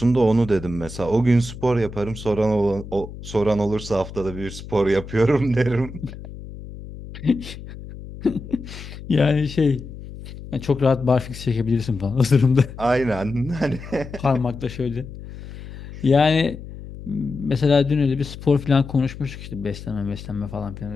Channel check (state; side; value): noise; left; hum, 13 dB below the sound